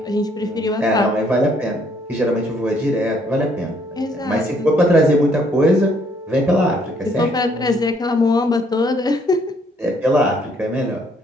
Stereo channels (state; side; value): normal; both; correlation 0.67